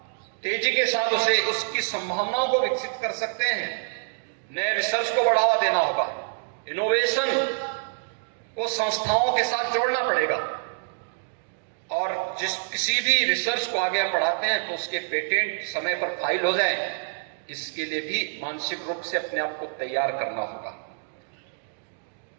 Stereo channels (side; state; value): left; silent; digital silence